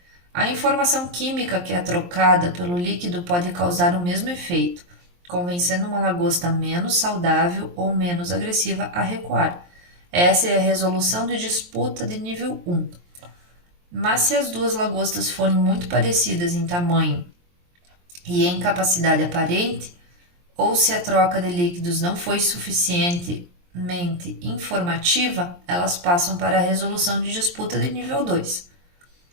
A informação química que é trocada pelo líquido pode causar o mesmo efeito, convencendo uma lagosta menos saudável ou menos agressiva a recuar. Essa é a resolução de disputa de nível 1. Mas se as duas lagostas forem muito parecidas em tamanho e em capacidade aparente, ou se a troca de líquidos não foi suficientemente informativa, elas passam para a resolução de disputa de nível 2.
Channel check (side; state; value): left; late; 23 ms